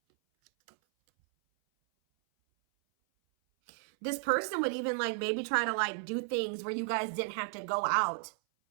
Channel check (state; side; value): silent; left; 56 dB below the other